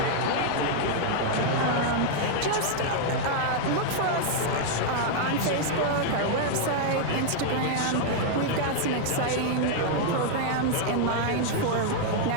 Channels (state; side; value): different; both; correlation -0.01